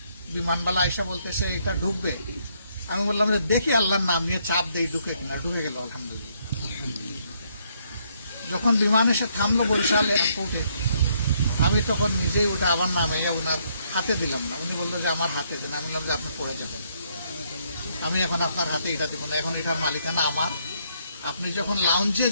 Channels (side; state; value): both; inverted; correlation -0.72